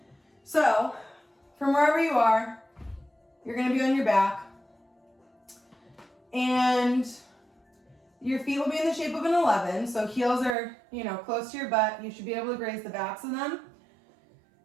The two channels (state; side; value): drops out; left; at 10.6 s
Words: So, from wherever you are, you're gonna be on your back. And your feet will be in the shape of an 11. So heels are, close to your butt. You should be able to graze the backs of them.